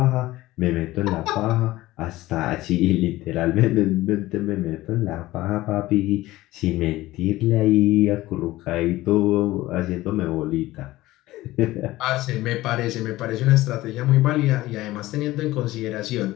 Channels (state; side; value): quieter; right; 17.4 dB